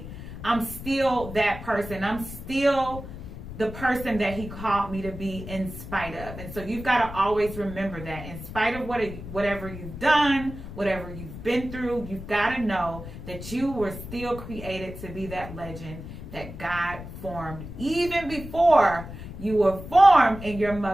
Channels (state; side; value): noise; left; rumble, 11 dB below the sound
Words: I'm still that person. I'm still the person that he called me to be in spite of. And so you've got to always remember that in spite of whatever you've done, whatever you've been through, you've got to know that you were still created to be that legend that God formed even before you were formed in your